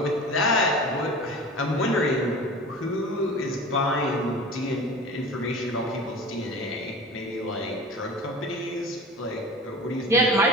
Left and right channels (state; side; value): normal; both; correlation 0.37